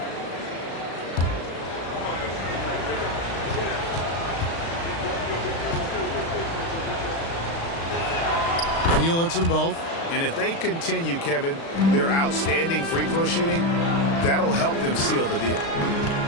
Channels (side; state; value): right; late; 36 ms